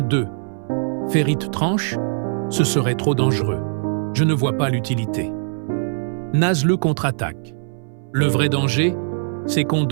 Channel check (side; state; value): left; silent; 65 dB below the other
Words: 2. Ferit tranche, ce serait trop dangereux. Je ne vois pas l'utilité. Nazlu contre-attaque. Le vrai danger, c'est qu'on